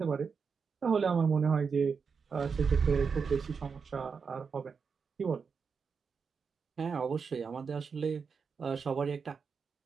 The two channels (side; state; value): left; quieter; 5.6 dB